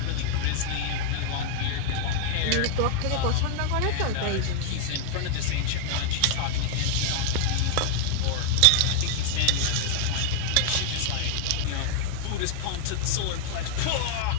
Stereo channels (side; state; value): both; different; correlation 0.00